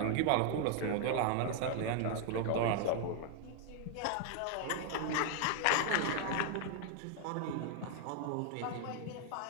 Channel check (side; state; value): both; different; correlation 0.00